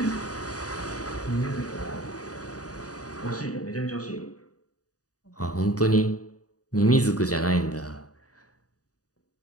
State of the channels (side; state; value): right; late; 0.67 ms